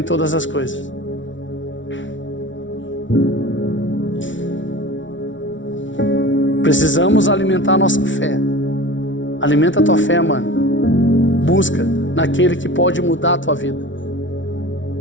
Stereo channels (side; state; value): right; late; 0.56 ms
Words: todas as coisas. Precisamos alimentar a nossa fé. Alimenta a tua fé, mano. Busca naquele que pode mudar a tua vida.